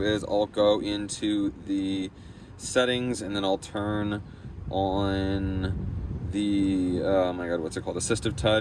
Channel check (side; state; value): both; identical; correlation 1.00